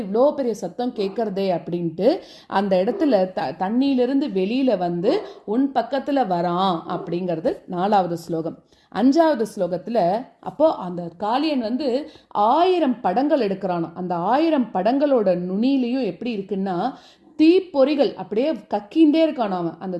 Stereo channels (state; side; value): identical; both; correlation 1.00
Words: இவ்வளோ பெரிய சத்தம் கேட்கறதே அப்படின்ட்டு அந்த இடத்துல தண்ணியிலிருந்து வெளியில உன் பக்கத்துல வரான் அப்படிங்கிறது 4வது ஸ்லோகம். 5வது ஸ்லோகத்துல அப்போ அந்த காளியன் 1000 படங்கள் எடுக்கிறானா. அந்த 1000 படங்களோட நுனியிலையும் எப்படி இருக்குன்னா தீப்பொறிகள் அப்படியே கக்கிண்டே இருக்கானாம. அந்த